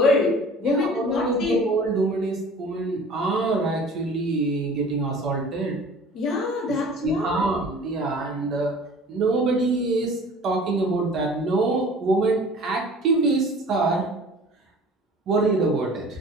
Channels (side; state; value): both; normal; correlation 0.45